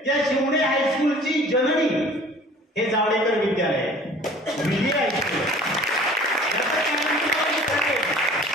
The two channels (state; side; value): normal; both; correlation 0.48